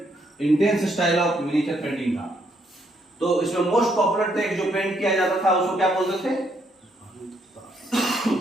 intense style of miniature painting था। तो इसमें मोस्ट पॉपुलर टेक्स्ट जो पेंट किया जाता था उसको क्या बोलते थे,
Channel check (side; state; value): both; normal; correlation 0.73